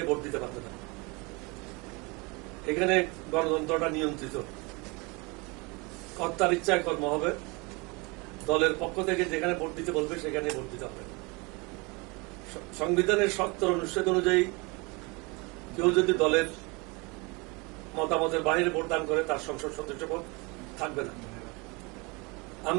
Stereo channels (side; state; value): left; quieter; 27.6 dB